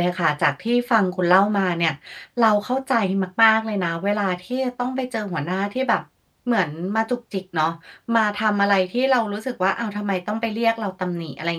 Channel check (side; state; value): both; identical; correlation 1.00